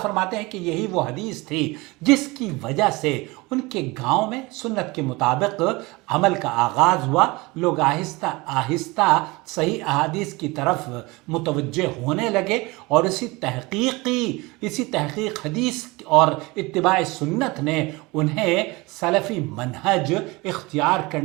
فرماتے ہیں کہ یہی وہ حدیث تھی جس کی وجہ سے ان کے گاؤں میں سنت کے مطابق عمل کا آغاز ہوا. لوگ آہستہ آہستہ صحیح احادیث کی طرف متوجہ ہونے لگے اور اسی تحقیق حدیث اور اتباع سنت نے انہیں سلفی منہج اختیار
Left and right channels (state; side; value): quieter; left; 23.6 dB